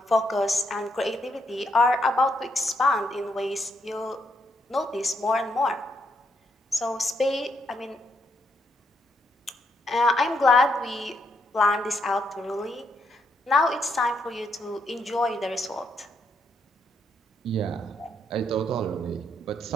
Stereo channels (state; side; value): normal; both; correlation 0.77